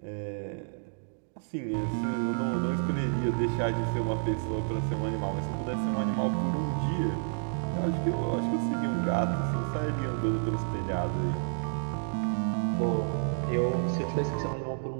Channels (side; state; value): left; silent; digital silence